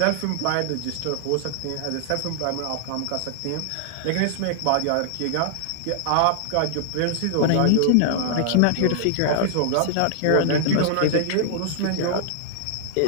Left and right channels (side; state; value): both; different; correlation -0.01